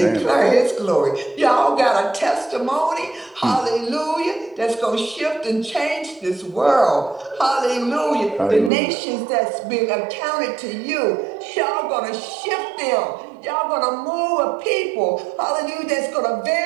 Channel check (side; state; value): left; drops out; at 8.7 s